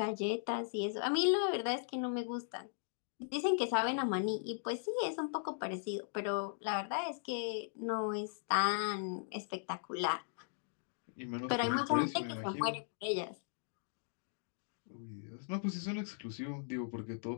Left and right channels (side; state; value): right; silent; digital silence